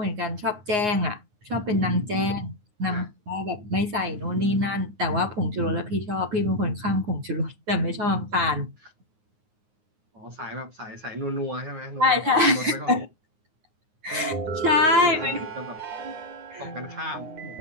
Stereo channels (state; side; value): late; left; 9.6 ms